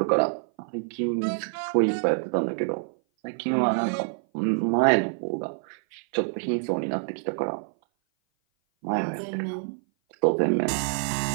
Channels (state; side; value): silent; left; 57 dB below the other